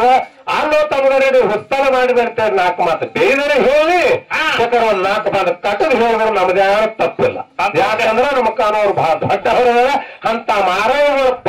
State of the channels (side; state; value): both; identical; correlation 1.00